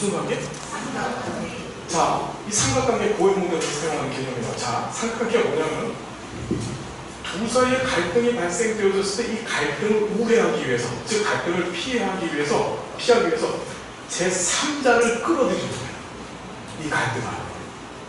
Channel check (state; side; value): identical; both; correlation 1.00